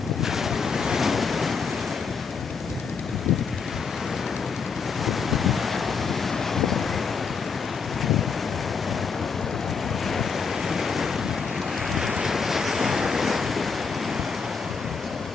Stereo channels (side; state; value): right; quieter; 5.5 dB